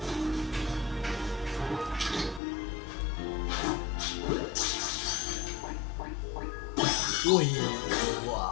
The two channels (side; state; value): right; drops out; at 2.4 s